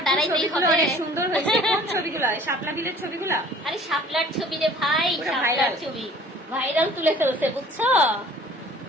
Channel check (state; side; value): normal; both; correlation 0.51